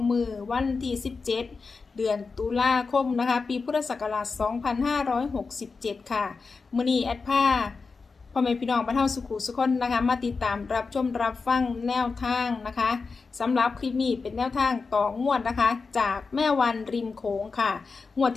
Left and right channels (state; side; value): quieter; right; 4.5 dB